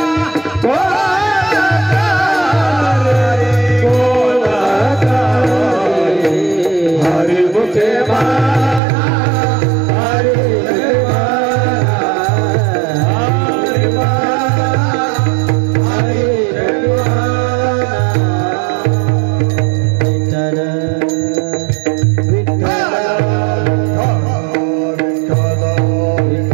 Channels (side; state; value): left; drops out; at 8.8 s